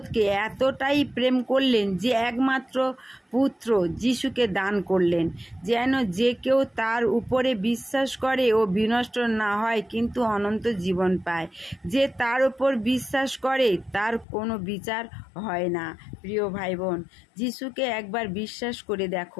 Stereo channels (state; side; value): drops out; right; at 14.2 s